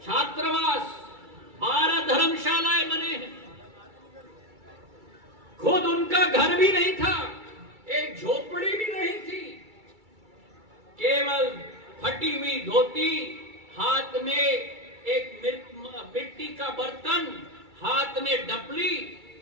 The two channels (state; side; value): late; left; 2.3 ms